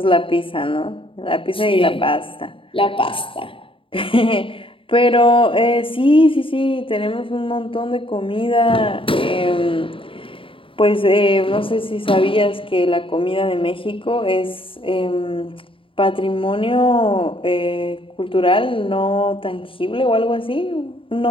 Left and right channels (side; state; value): right; late; 0.25 ms